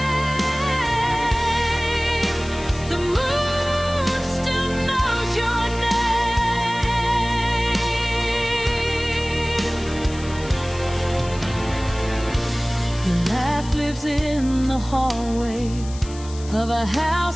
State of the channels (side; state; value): left; noise; hiss, 17 dB below the sound